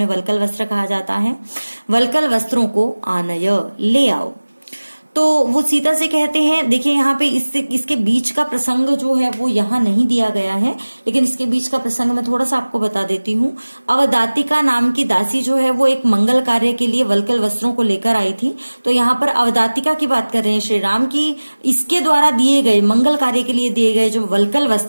वल्कल वस्त्र कहा जाता है, वल्कल वस्त्रों को आनय ले आओ। तो वो सीता से कहते हैं, देखिए यहाँ पे इसके बीच का प्रसंग जो है वो यहाँ नहीं दिया गया है, लेकिन इसके बीच का प्रसंग मैं थोड़ा सा आपको बता देती हूँ। अवदातिका नाम की दासी जो है वो एक मंगल कार्य के लिए वल्कल वस्त्रों को लेकर आई थी। तो यहाँ पर अवदातिका की बात कर रहे हैं श्री राम की, इसके द्वारा दिए गए मंगल कार्य के लिए दिए गए जो वल्कल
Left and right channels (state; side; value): inverted; both; correlation -1.00